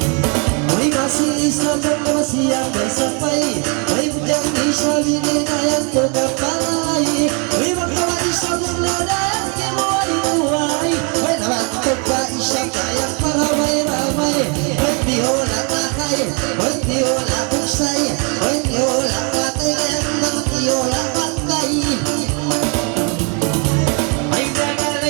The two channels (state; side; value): quieter; left; 35.2 dB